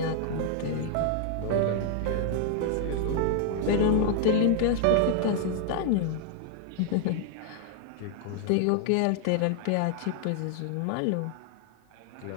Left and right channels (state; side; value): different; both; correlation 0.00